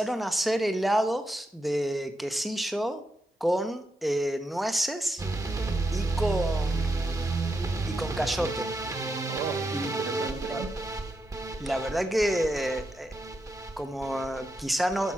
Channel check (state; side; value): normal; both; correlation 0.85